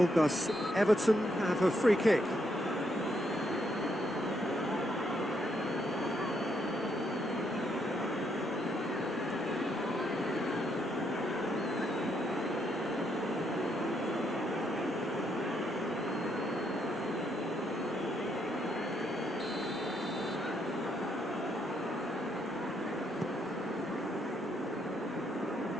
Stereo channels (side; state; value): both; normal; correlation 0.76